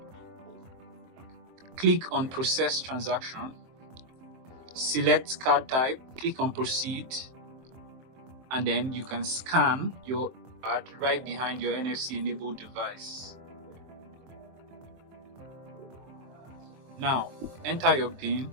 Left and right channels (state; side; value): late; left; 23 ms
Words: click on process transaction, select card type, click on proceed, and then you can scan your card right behind your NFC enabled device. Now enter your PIN